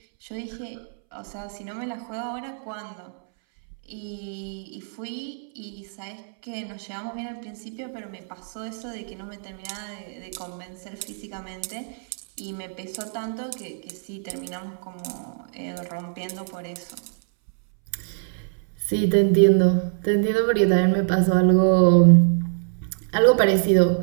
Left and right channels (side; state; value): left; silent; 62 dB below the other